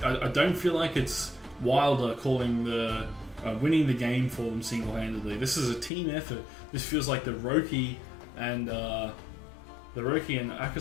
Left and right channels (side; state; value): right; drops out; at 5.9 s